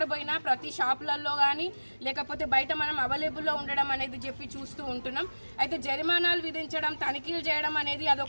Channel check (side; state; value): both; inverted; correlation -1.00